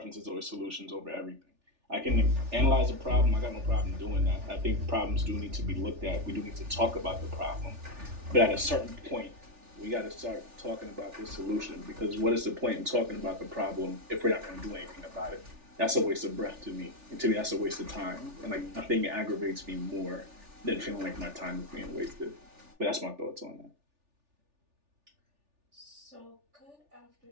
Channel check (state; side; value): late; left; 3.4 ms